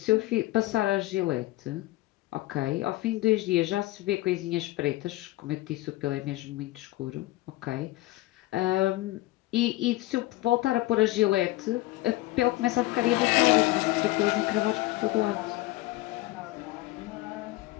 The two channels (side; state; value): right; quieter; 18.1 dB